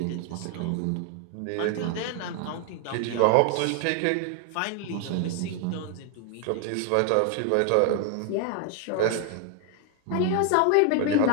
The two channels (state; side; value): different; both; correlation 0.00